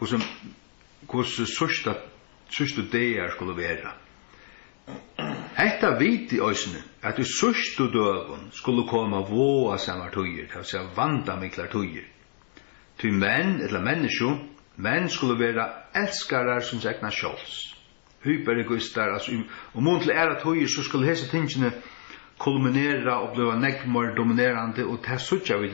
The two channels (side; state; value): right; silent; digital silence